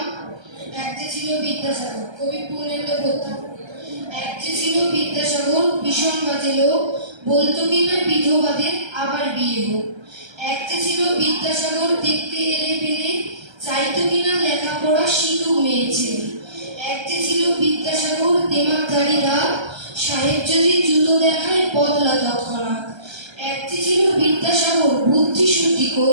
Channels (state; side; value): late; left; 1.3 ms